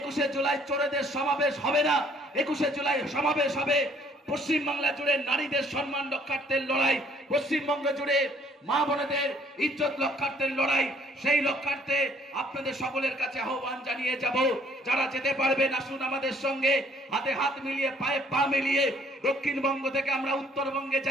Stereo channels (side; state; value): both; normal; correlation 0.61